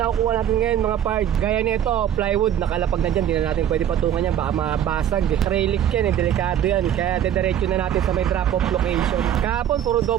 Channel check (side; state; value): left; quieter; 10.2 dB